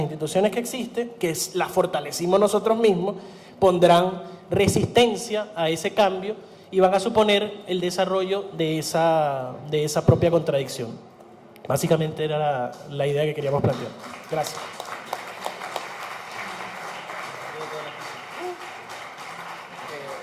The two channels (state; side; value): identical; both; correlation 1.00